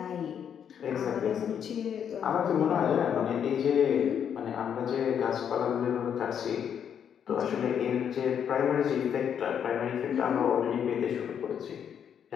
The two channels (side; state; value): right; quieter; 8.3 dB